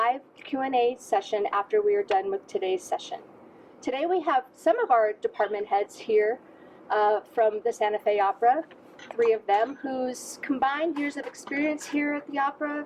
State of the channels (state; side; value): identical; both; correlation 1.00